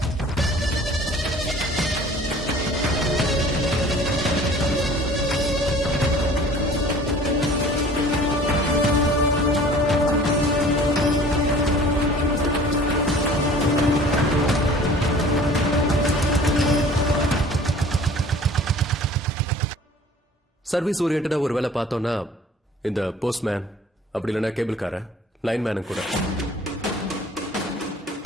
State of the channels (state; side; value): normal; both; correlation 0.48